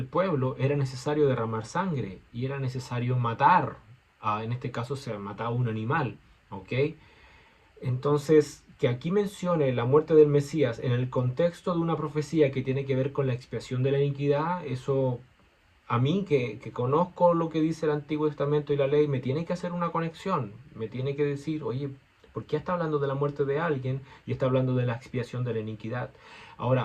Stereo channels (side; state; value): both; identical; correlation 1.00